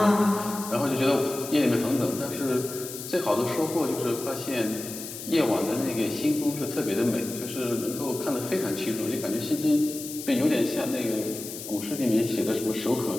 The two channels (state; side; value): noise; left; hiss, 10 dB below the sound